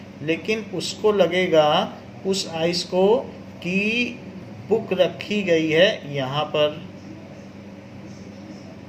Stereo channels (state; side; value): identical; both; correlation 1.00